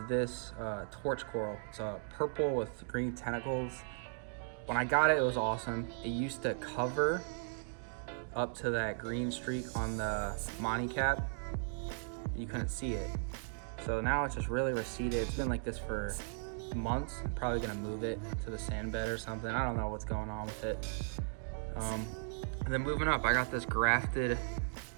this torch coral. It's purple with green tentacles. When I got it, it was awesome. It used to cover up to that green streak on the Monty cap. You couldn't see it. So now it's just really receded. It's been like this for months. I'm probably gonna move it to the sand bed or something. I don't know what's going on with it. And then moving up, I got this grafted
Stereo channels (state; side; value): silent; left; digital silence